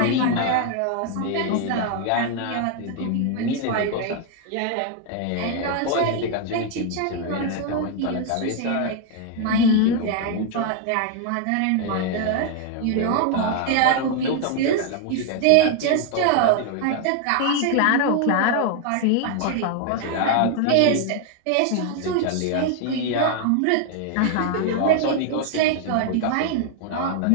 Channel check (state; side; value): different; both; correlation 0.00